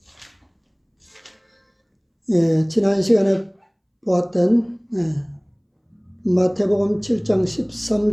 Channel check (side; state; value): both; identical; correlation 1.00